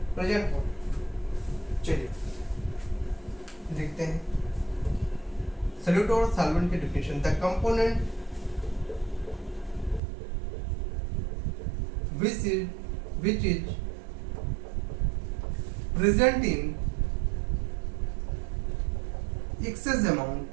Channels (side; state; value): left; drops out; at 10.0 s